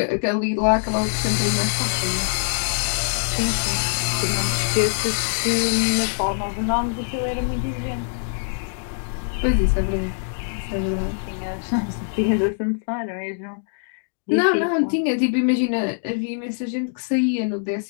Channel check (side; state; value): right; silent; digital silence